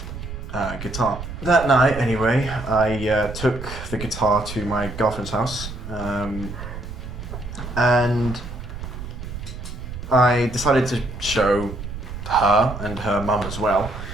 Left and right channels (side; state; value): right; noise; rumble, 9 dB below the sound